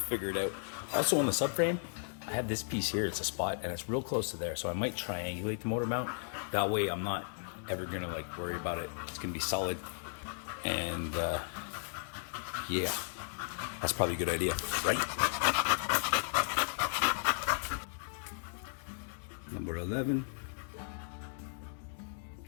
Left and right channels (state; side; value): silent; right; digital silence